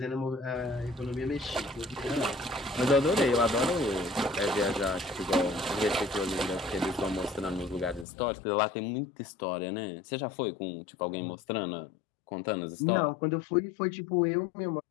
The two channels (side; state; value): right; drops out; at 8.1 s